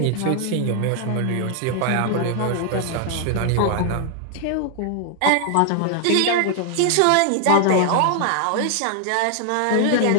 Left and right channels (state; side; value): different; both; correlation 0.00